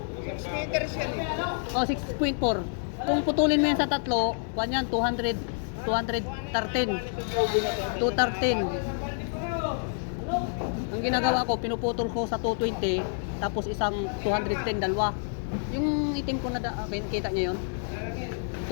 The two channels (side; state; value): right; silent; digital silence